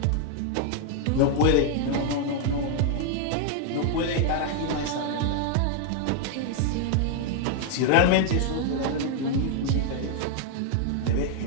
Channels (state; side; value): different; both; correlation 0.00